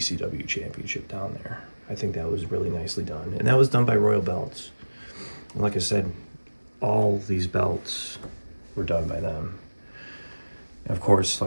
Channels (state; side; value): inverted; both; correlation -1.00